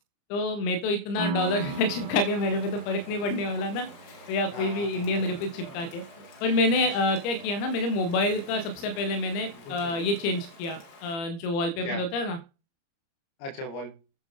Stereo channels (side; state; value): right; late; 30 ms